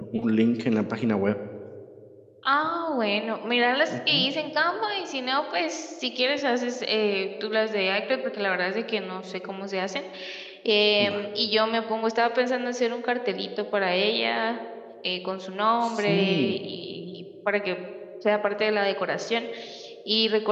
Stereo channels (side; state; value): both; identical; correlation 1.00